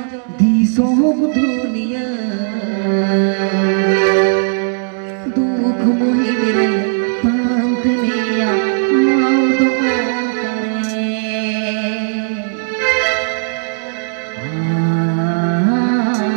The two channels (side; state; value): left; silent; digital silence